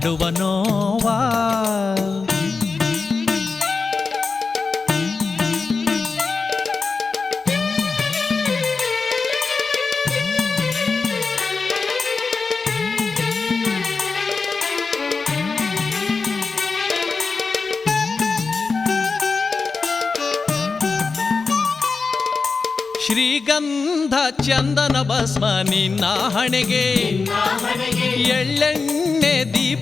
ನೋವಾ ಶ್ರೀಗಂಧ ಚಂದನ ಭಸ್ಮ ನಿನ್ನ ಹಣೆಗೆ ಎಳ್ಳೆಣ್ಣೆ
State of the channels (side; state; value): right; quieter; 4.5 dB